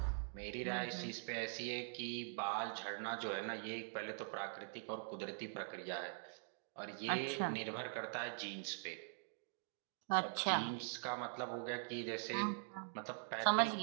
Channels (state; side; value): silent; left; digital silence